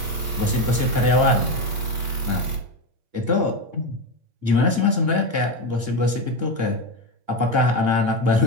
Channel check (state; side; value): late; left; 8.7 ms